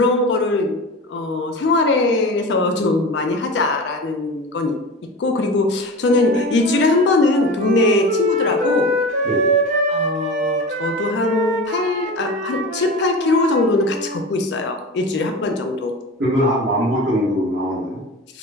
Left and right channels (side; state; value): both; normal; correlation 0.31